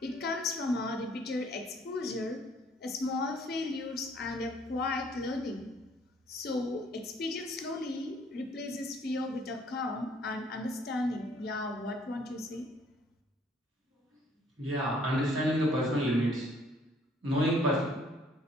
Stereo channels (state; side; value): normal; both; correlation 0.61